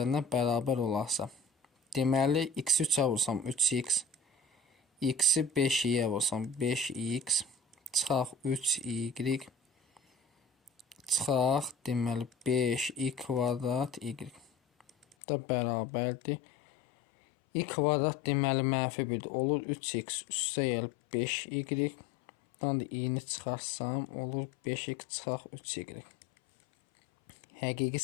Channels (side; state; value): right; drops out; at 15.2 s